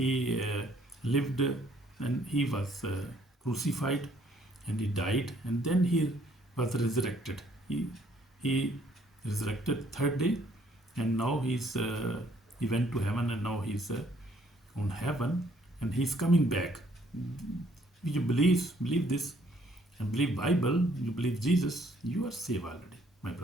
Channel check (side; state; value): both; normal; correlation 0.64